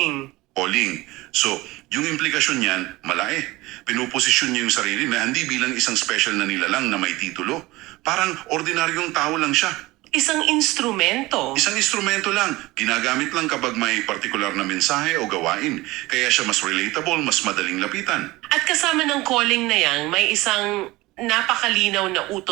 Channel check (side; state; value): left; quieter; 20.1 dB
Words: Calling. So, yung implikasyon niyan, malaki. Pinuposisyon niya yung sarili na hindi bilang isang special na nilalang na may titulo. Parang ordinaryong tao lang siya. Isang instrumento. Isang instrumento lang. Ginagamit lang kapag may partikular na mensahe o gawain. Kaya siya mas relatable, mas madaling lapitan. At kasama ng calling na yan, may isang napakalinaw na